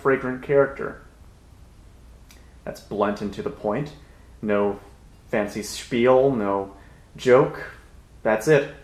fragrant character. That's blunt and to the point. No fancy spiel, no joke. That's it.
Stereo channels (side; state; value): both; identical; correlation 1.00